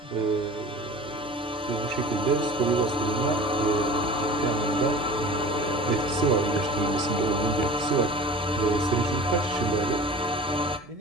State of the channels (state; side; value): normal; both; correlation 0.40